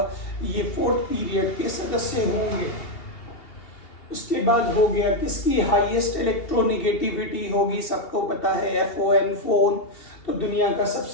ये 4th पीरियड के सदस्य होंगे। उसके बाद हो गया किसकी हाईएस्ट इलेक्ट्रोनिगेटिविटी होगी, सबको पता है FON फोन। तो दुनिया का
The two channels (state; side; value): late; right; 2.8 ms